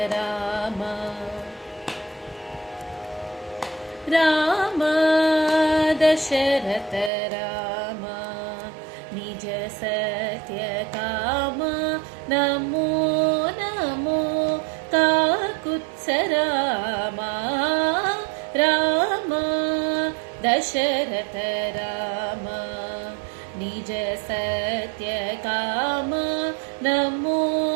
राम राम दशरथ राम निज सत्य काम नमो नमो काकुत्स राम राम दशरथ राम निज सत्य काम नमो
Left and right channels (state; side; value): drops out; left; at 7.1 s